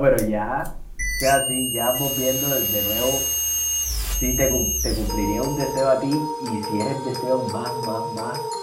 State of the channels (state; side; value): identical; both; correlation 1.00